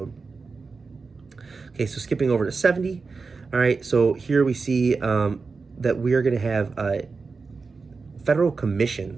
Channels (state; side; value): quieter; left; 4.5 dB